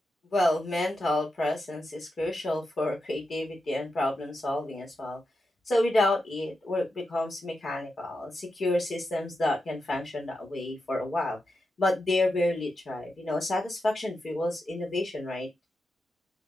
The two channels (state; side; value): normal; both; correlation 0.88